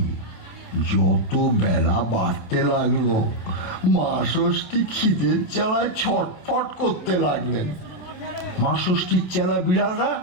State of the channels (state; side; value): late; right; 27 ms